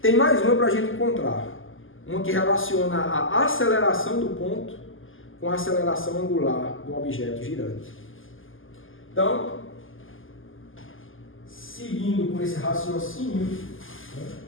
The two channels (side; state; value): right; late; 0.58 ms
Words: Tem mais uma para a gente encontrar, uma que relaciona a aceleração do ponto com a aceleração angular do objeto girante. Então, seguindo com esse raciocínio,